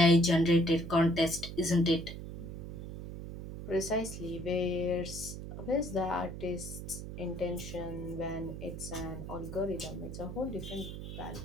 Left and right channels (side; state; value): right; noise; hum, 9 dB below the sound